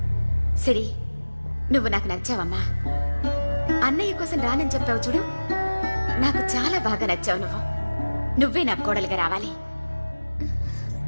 సరే, నువ్వు నాకు నచ్చావమ్మా. అన్నయ్య కోసం రానని చెప్పావు చూడు, నాకు చాలా బాగా నచ్చావు నువ్వు. నువ్వే నా కోడలుగా రావాలి.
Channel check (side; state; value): both; inverted; correlation -1.00